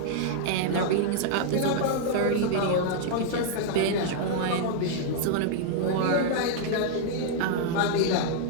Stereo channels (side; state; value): both; different; correlation -0.01